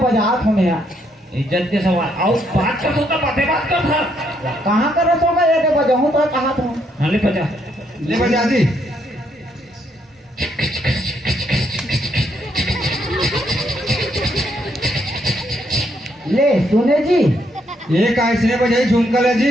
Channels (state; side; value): normal; both; correlation 0.73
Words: हूँ मैं। इज्जत के सवाल आओ बात कर तो बात कर था। कहाँ कर रहा होगा ये बजाऊँ तो कहाँ था। हाँ ले बजा। ले बजा जी। ले सुने जी। ये कैसे बजाई झुमकल है